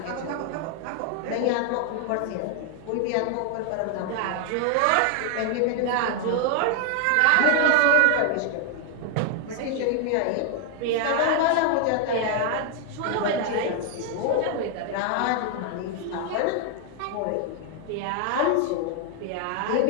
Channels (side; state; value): both; different; correlation 0.00